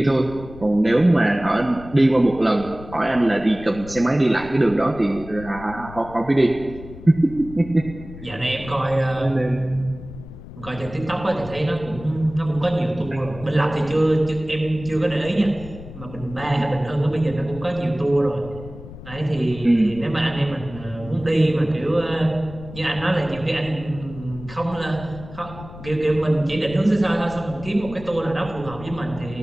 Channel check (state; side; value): noise; left; rumble, 15 dB below the sound